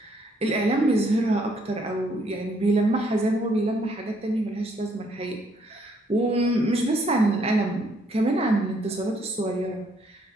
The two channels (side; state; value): both; normal; correlation 0.68